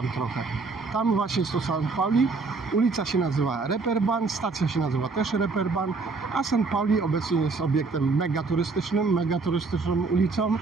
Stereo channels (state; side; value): quieter; left; 4.1 dB